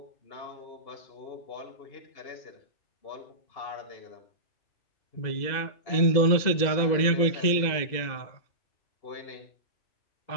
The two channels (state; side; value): late; right; 2.0 ms